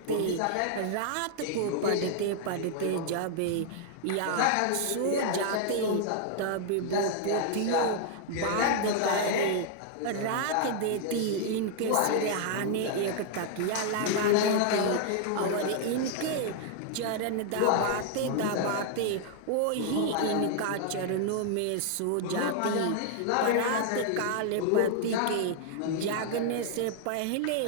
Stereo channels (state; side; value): different; both; correlation -0.01